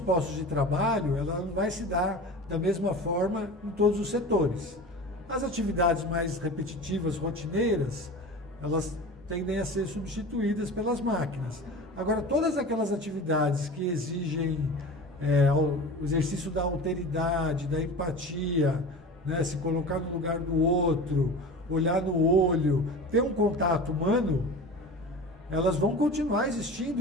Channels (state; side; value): normal; both; correlation 0.34